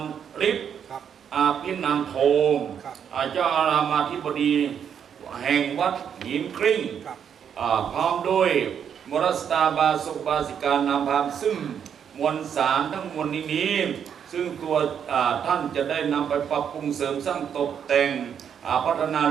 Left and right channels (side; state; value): left; quieter; 8.1 dB